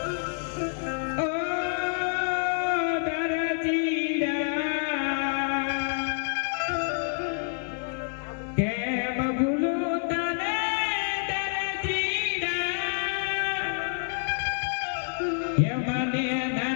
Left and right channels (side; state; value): right; silent; 59 dB below the other